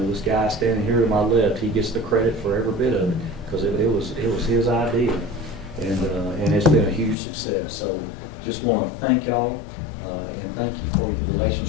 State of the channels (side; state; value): right; drops out; at 7.2 s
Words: know, this guy standing here to my left, he gets the credit for every bit of it because it was his idea, and it's been a huge success. So just want to thank y'all and thank you for your